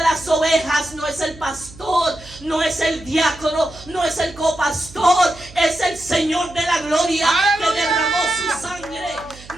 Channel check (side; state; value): right; noise; hum, 19 dB below the sound